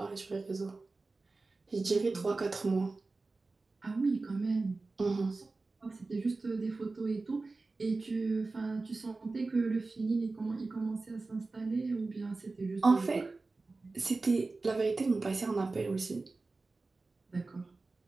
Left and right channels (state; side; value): quieter; left; 3.6 dB